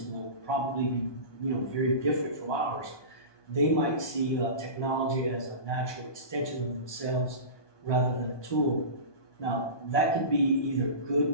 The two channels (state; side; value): late; right; 1.2 ms